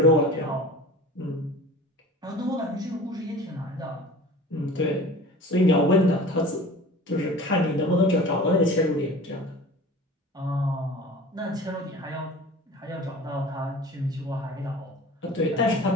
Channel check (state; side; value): normal; both; correlation 0.40